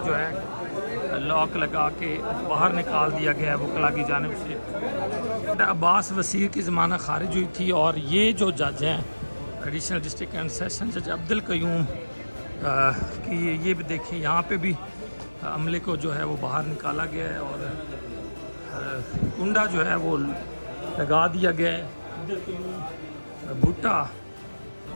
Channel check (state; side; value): inverted; both; correlation -1.00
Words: जो है लॉक लगा के बाहर निकाल दिया गया है वकला की जानिब से। अब्बास वसीर की ज़मानत खारिज हुई थी और ये जो जज हैं एडिशनल डिस्ट्रिक्ट एंड सेशन जज अब्दुल कयूम की, ये भी देखिए यहाँ पे भी अमले को जो है वो बाहर निकाला गया है और कुंडा जो है वो लगा दिया गया है। अब्दुल कयूम भुट्टा